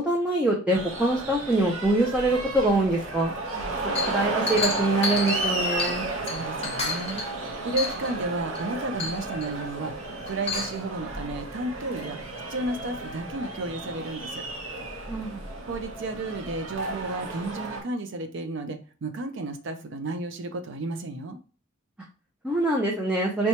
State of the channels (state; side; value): normal; both; correlation 0.37